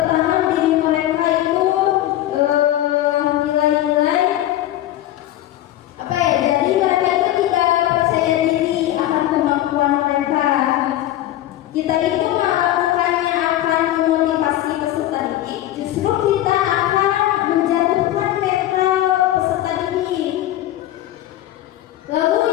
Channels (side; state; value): right; quieter; 13.9 dB